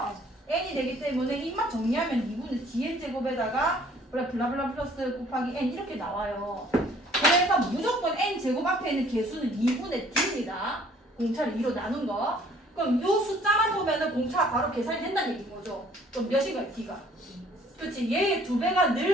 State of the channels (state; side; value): normal; both; correlation 0.57